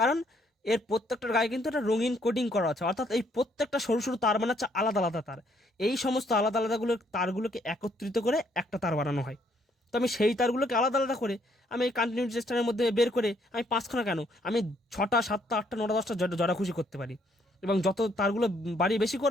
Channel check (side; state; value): both; normal; correlation 0.69